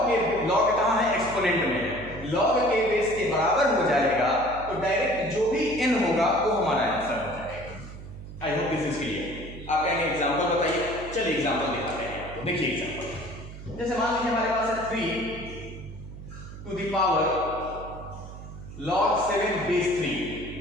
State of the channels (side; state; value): right; noise; hum, 13 dB below the sound